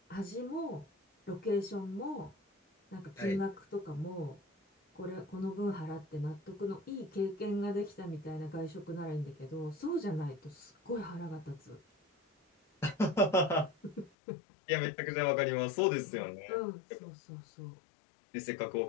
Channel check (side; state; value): right; drops out; at 14.1 s